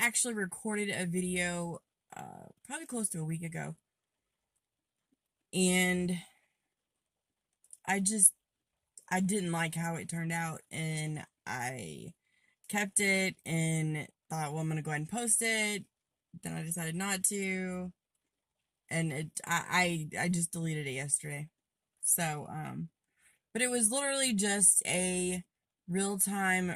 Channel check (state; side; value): identical; both; correlation 1.00